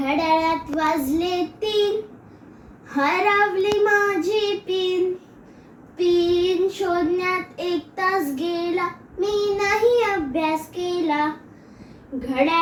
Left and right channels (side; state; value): both; identical; correlation 1.00